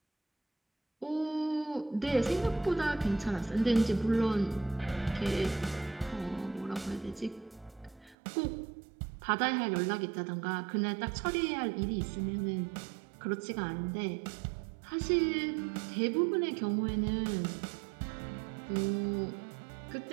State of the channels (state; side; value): drops out; left; at 8.2 s